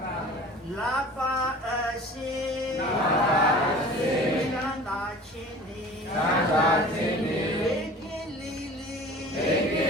လာပါအရှင်ချမ်းသာခြင်းနေဘေကင်းလေးလေး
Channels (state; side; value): normal; both; correlation 0.42